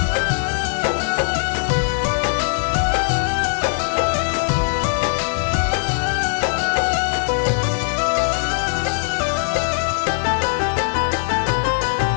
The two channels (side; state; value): right; silent; digital silence